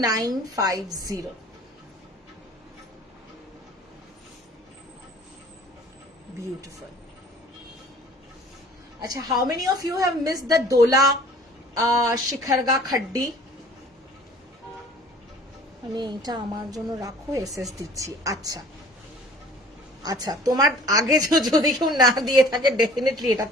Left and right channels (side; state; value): both; normal; correlation 0.49